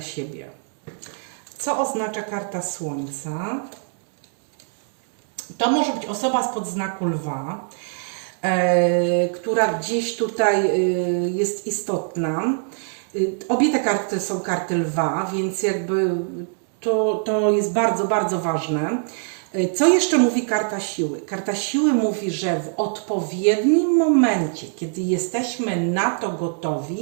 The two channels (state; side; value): silent; left; 61 dB below the other